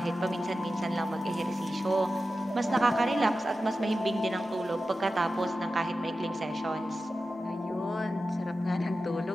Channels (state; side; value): normal; both; correlation 0.93